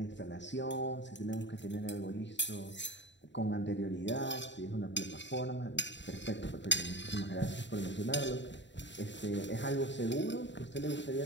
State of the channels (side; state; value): right; late; 0.52 ms